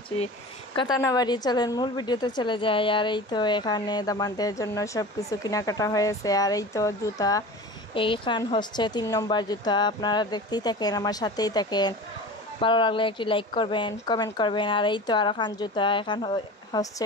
কথা না বাড়িয়ে চলেন মূল ভিডিওতে চলে যায়। আর এই তো এখানে দামানদের জন্য সব কিছু কেনাকাটা হয়েছে। আর এই তো জুতা, এইখান হচ্ছে 3 নম্বর জুতা। আপনারা দেখতেই থাকেন, আমার সাথেই থাকেন। ভালো লাগলে একটি লাইক করবেন, কমেন্ট করবেন। আর এই তো আর এখান জুতা, এখান হচ্ছে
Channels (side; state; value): both; normal; correlation 0.34